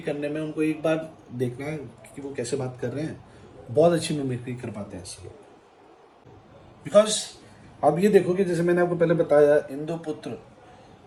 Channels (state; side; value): identical; both; correlation 1.00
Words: करने में उनको एक बार देखना है कि वो कैसे बात कर रहे हैं, बहुत अच्छी मिमिक्री कर पाते हैं ऐसे लोग। बिकॉज अब ये देखो कि जैसे मैंने आपको पहले बताया इंद्रपुत्र,